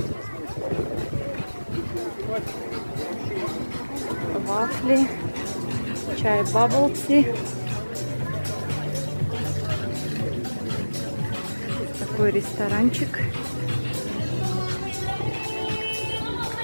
Вафли, чай баблти. Такой ресторанчик.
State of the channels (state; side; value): inverted; both; correlation -1.00